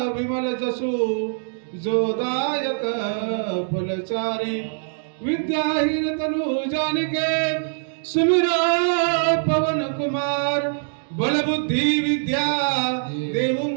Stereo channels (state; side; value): silent; left; digital silence